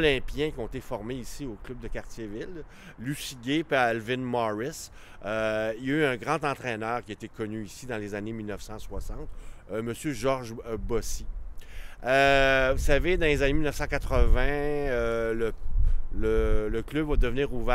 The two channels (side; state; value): both; identical; correlation 1.00